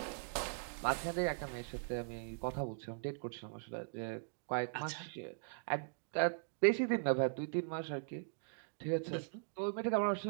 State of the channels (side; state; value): left; silent; digital silence